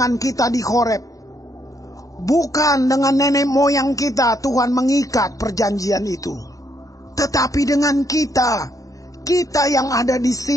kita di Horeb. Bukan dengan nenek moyang kita Tuhan mengikat perjanjian itu, tetapi dengan kita yang ada di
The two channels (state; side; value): late; right; 0.16 ms